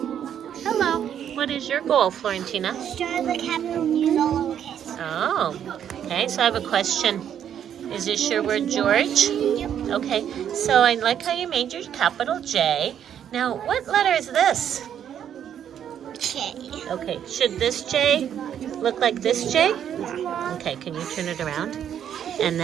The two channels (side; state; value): left; quieter; 9.4 dB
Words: Hello. What is your goal, Florentina? Start with a capital and use all lowercase. Oh, okay. So I have a question. Is this your word, George? Yep. Okay. So I like how you made your capital J. Now, what letter is this? J. Okay. Should this J look like this J? Okay. Can you turn it around? And